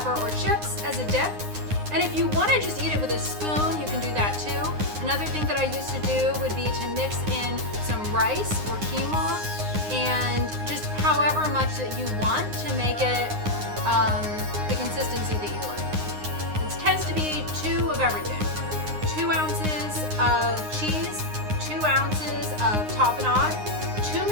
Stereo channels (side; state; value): left; late; 9.7 ms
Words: or chips as a dip. And if you want to just eat it with a spoon, you can do that too. Another thing that I used to do would be to mix in some rice or quinoa, and just however much that you want to make it the consistency that you like. It tends to be 2 of everything. 2 ounces of cheese, 2 ounces of tapenade, 2